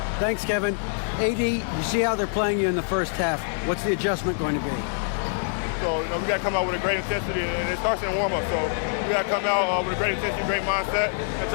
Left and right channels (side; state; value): right; silent; digital silence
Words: Thanks, Kevin. AD, you see how they're playing you in the first half. What's the adjustment going to be? So, we got to come out with a great intensity, and it starts in the warm-up. So, we got to come out with a great intensity, great mindset, and